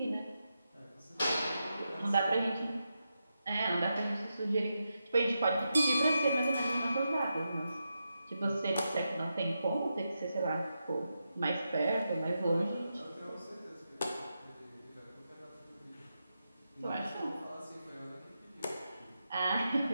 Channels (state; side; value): inverted; both; correlation -0.87